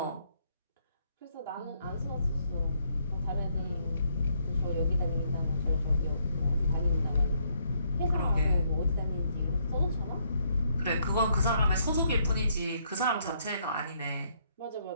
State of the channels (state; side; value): inverted; both; correlation -0.72